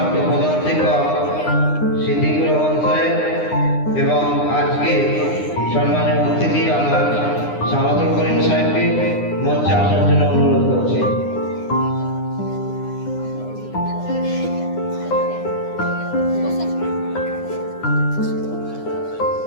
প্রধান শিক্ষক সিদ্দিকুর রহমান সাহেব এবং আজকে সম্মানীয় অতিথি আলহাজ সামাদুল করিম সাহেবকে মঞ্চে আসার জন্য অনুরোধ করছি।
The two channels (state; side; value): late; right; 9.8 ms